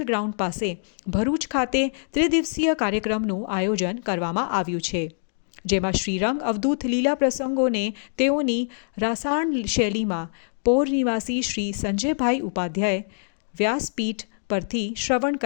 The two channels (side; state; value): right; silent; digital silence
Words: ગ્રાઉન્ડ પાસે ભરૂચ ખાતે ત્રિદિવસીય કાર્યક્રમનું આયોજન કરવામાં આવ્યું છે, જેમાં શ્રીરંગ અવધૂત લીલા પ્રસંગોને તેઓની રાસાયણ શૈલીમાં પોર નિવાસી શ્રી સંજયભાઈ ઉપાધ્યાય વ્યાસપીઠ પરથી શ્રવણ